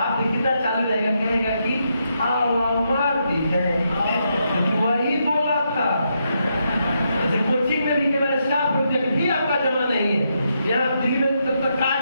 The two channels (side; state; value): both; inverted; correlation -0.80